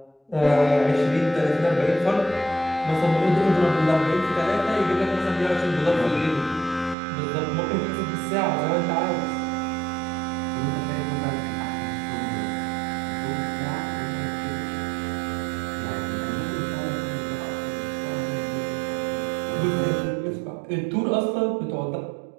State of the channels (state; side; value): drops out; left; at 7.0 s